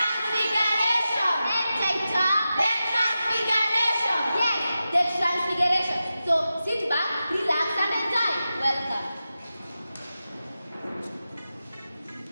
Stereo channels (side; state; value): both; inverted; correlation -0.92